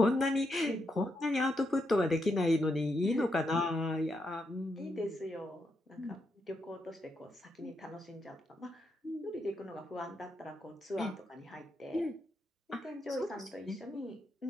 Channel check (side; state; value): both; normal; correlation 0.81